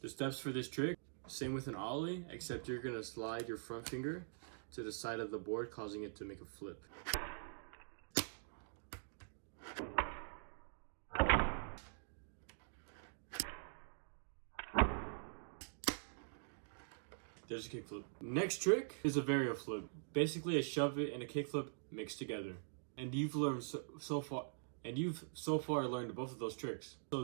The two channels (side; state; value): left; silent; digital silence